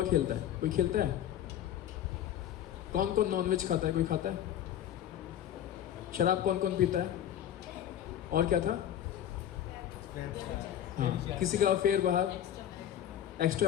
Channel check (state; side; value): quieter; right; 10.8 dB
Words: खेलता है? कोई खेलता है? कौन कौन नॉनवेज खाता है? कोई खाता है? शराब कौन कौन पीता है? और क्या था? हाँ, किसी का अफेयर बाहर,